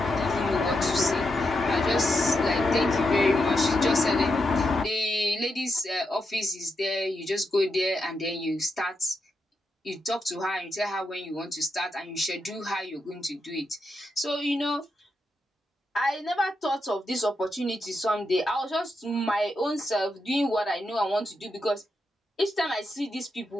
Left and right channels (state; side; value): normal; both; correlation 0.84